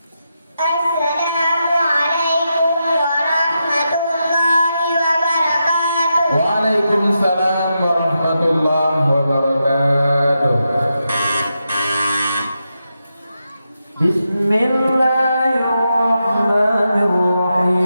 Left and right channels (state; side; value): inverted; both; correlation -0.87